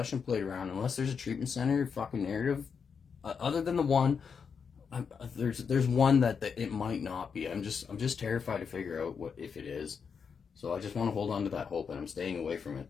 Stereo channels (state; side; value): quieter; right; 6.2 dB